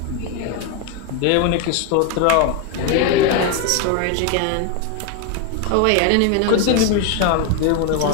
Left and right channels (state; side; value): different; both; correlation 0.01